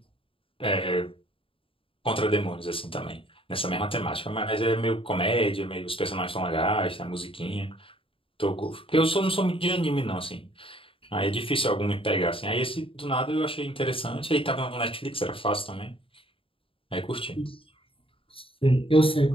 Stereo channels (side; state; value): right; late; 0.26 ms